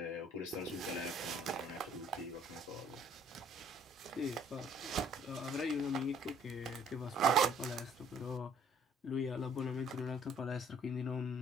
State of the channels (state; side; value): normal; both; correlation 0.59